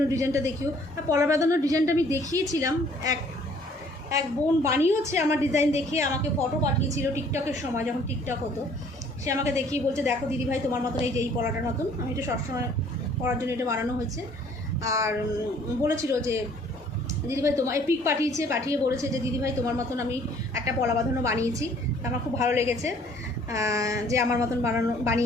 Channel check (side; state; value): both; normal; correlation 0.58